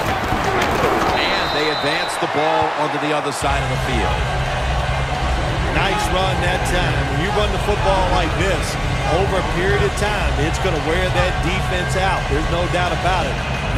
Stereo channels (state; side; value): identical; both; correlation 1.00